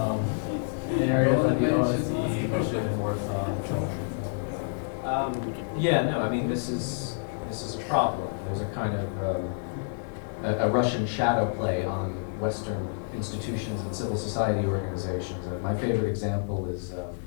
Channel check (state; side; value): silent; right; digital silence